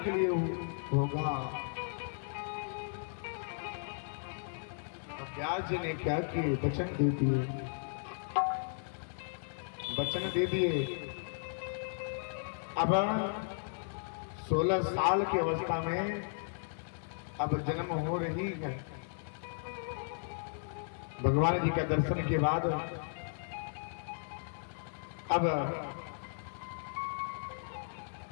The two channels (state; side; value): silent; right; digital silence